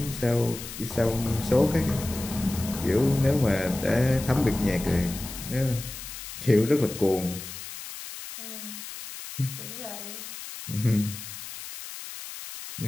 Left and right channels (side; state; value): left; noise; hiss, 11 dB below the sound